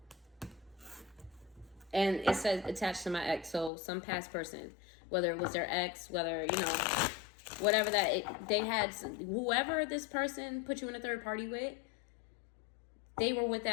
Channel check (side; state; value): right; drops out; at 3.7 s